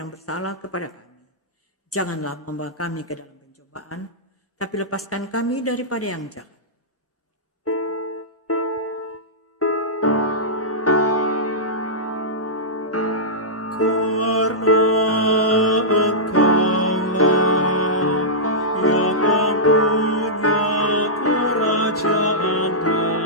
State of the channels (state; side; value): normal; both; correlation -0.14